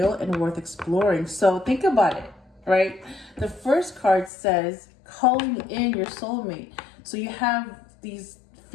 and worth exploring. So think about it, right? The first card says calling in your soulmate. So you have these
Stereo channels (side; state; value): right; drops out; at 4.3 s